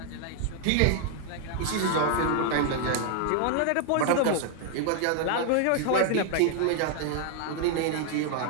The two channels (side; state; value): both; different; correlation 0.00